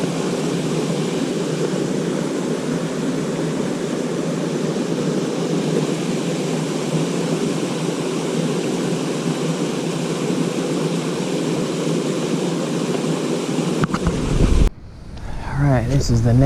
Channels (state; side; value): identical; both; correlation 1.00